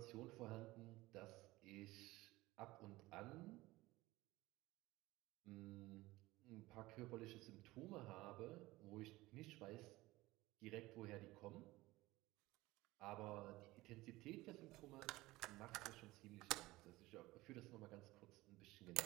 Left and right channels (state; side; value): quieter; left; 19.2 dB